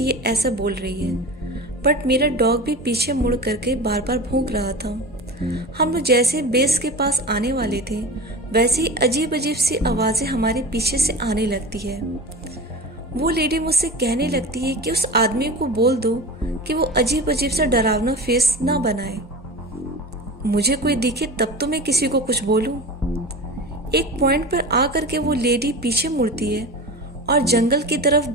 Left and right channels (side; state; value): both; normal; correlation 0.31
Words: ये ऐसा बोल रही है, बट मेरा डॉग भी पीछे मुड़ करके बार बार भौंक रहा था। हम लोग जैसे बेस के पास आने वाले थे, वैसे ही अजीब अजीब सी आवाज़ें हमारे पीछे से आने लगती है। वो लेडी मुझसे कहने लगती है कि उस आदमी को बोल दो कि वो अजीब अजीब सा डरावना फेस ना बनाए। मुझे कोई दिखे तब तो मैं किसी को कुछ बोलूं। एक पॉइंट पर आकर के वो लेडी पीछे मुड़ती है और जंगल की तरफ